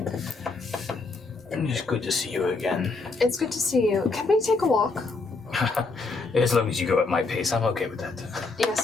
It's good to see you again. It's good to see you. Can we take a walk? As long as you go at my pace, I'm okay with that.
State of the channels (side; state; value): right; quieter; 3.8 dB